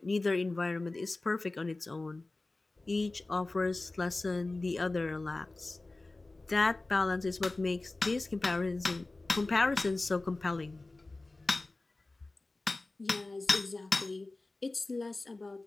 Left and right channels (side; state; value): right; quieter; 3.1 dB